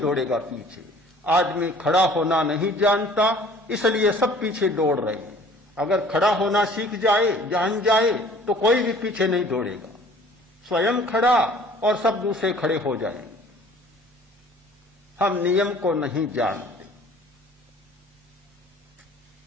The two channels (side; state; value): both; normal; correlation 0.52